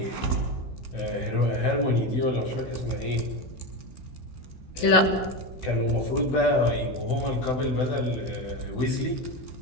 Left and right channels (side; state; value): right; late; 16 ms